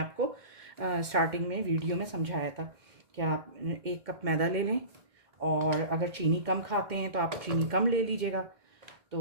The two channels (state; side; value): late; left; 2.1 ms